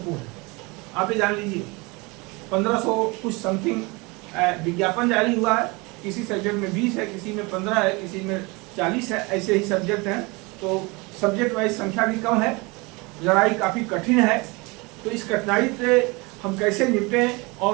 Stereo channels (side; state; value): left; quieter; 26.4 dB